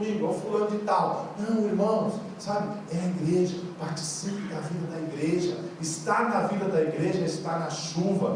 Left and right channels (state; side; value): identical; both; correlation 1.00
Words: é o fulano de tal. Não, irmãos, sabe, é a igreja. Participe da vida da igreja. Estar na vida da igreja é estar na